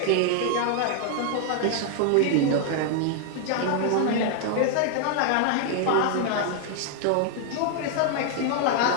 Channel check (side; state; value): both; different; correlation 0.00